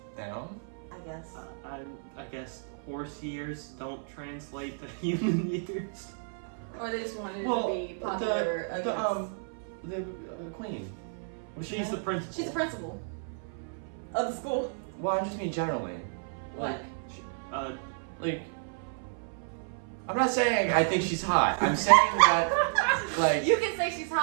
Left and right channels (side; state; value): left; silent; 57 dB below the other